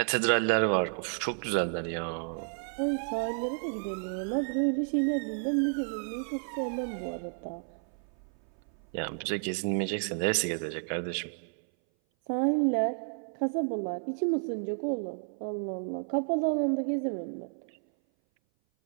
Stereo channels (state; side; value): silent; left; 57 dB below the other